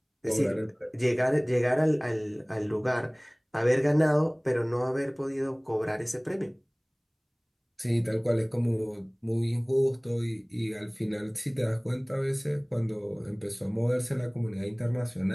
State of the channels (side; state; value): both; identical; correlation 1.00